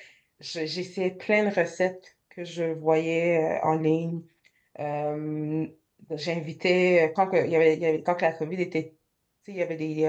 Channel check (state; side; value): identical; both; correlation 1.00